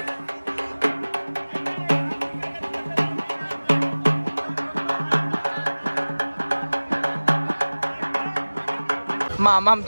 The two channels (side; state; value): both; inverted; correlation -1.00